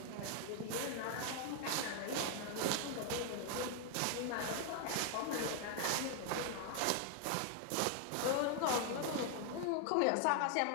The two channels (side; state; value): both; different; correlation 0.00